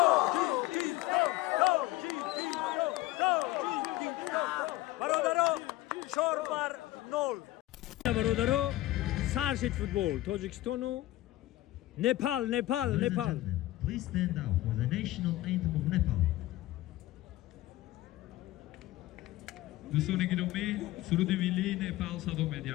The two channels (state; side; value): quieter; right; 16.8 dB